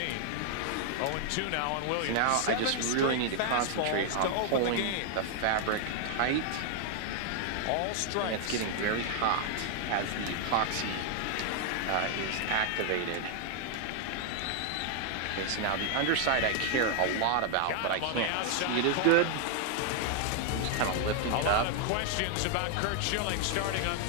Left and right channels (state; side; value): different; both; correlation 0.00